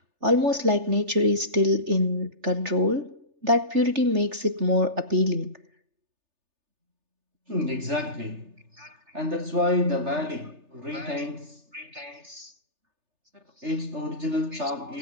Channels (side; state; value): left; late; 3.3 ms